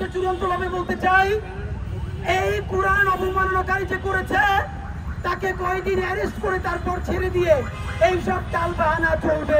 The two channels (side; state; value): both; identical; correlation 1.00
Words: চূড়ান্ত ভাবে বলতে চাই, এই কোরআন অবমাননাকারী যে করেছে তাকে কয়েকদিন অ্যারেস্ট করে তারপর ছেড়ে দিয়ে এইসব টালবাহানা চলবে